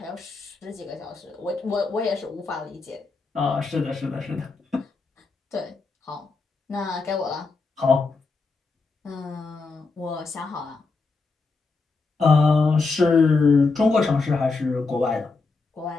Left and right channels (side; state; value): right; quieter; 4.0 dB